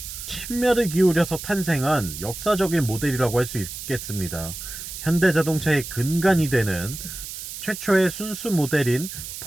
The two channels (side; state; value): right; noise; hiss, 9 dB below the sound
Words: 심혈을 기울여서 탄생한 역사적인 모델이라고 할 수 있겠습니다. 현대자동차의 근간이 되는 최초의 순수 모델인